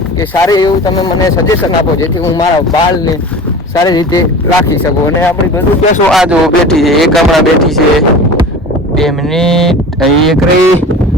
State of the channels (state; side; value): normal; both; correlation 0.36